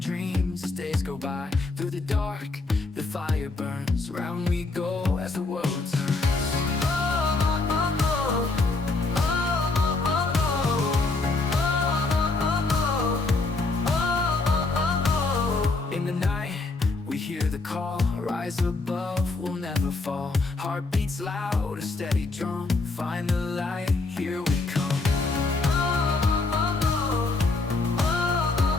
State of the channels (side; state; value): right; quieter; 3.6 dB